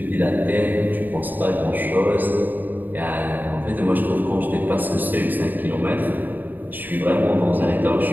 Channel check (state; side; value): late; left; 0.088 ms